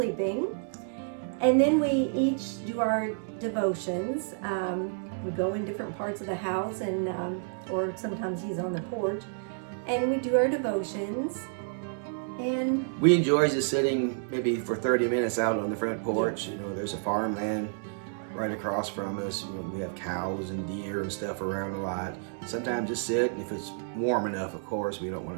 And then we each do our devotions. We go in different parts of the house, and or sometimes he's on the porch, and we do our devotions. And we enjoy just sitting maybe for 30 minutes out on the front porch. You know, there's a farmland right across from us. You know, we have cows and deer and stuff around a lot. Sometimes just sit, if it's warm enough, of course. We don't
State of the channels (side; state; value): left; silent; 58 dB below the other